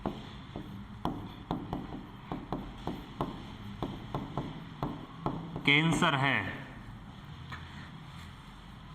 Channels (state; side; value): identical; both; correlation 1.00